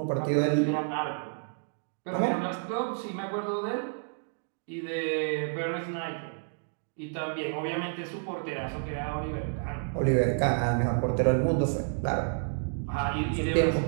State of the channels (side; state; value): left; silent; digital silence